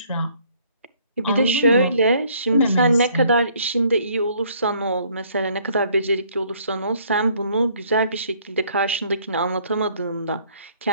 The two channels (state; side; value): inverted; both; correlation -0.62